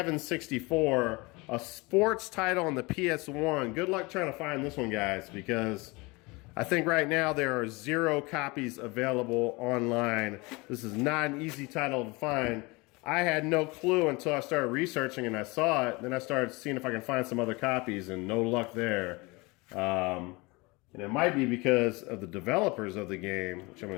A sports title on the PS1. Good luck trying to find this one, guys, because I think right now there are 0 copies available online. This is not an easy title to find. I had no clue until I started researching and I saw it. Then I started seeing if I can find some other copies, and no luck there. And it might be because of the developers of the game, which I'm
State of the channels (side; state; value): right; quieter; 25.2 dB